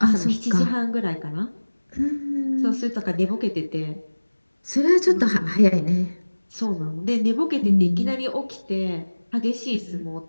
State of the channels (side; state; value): both; inverted; correlation -1.00